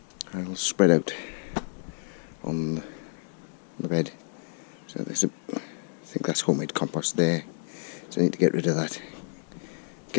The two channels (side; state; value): right; silent; digital silence